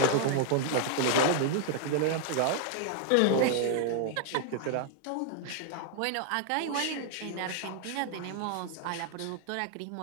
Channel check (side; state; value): both; different; correlation 0.00